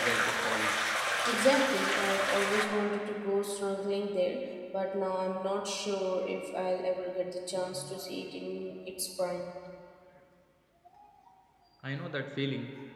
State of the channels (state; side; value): identical; both; correlation 1.00